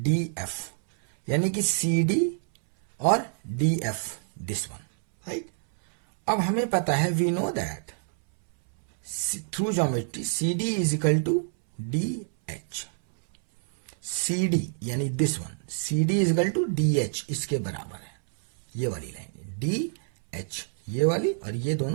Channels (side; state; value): left; silent; 60 dB below the other